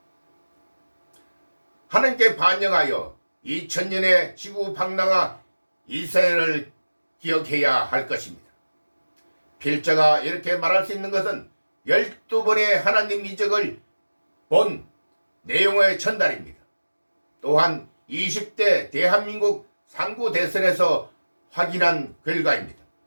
하나님께 반영하여 2000년의 지구 방랑아 이스라엘을 기억해야 할 것입니다. 필자가 이렇게 말할 수 있는 것은 12번의 하나님 이적을 본 내용의 전달입니다. 또한 20대 대한민국 상구 대선에서 확인한 결과입니다.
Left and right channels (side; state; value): both; inverted; correlation -1.00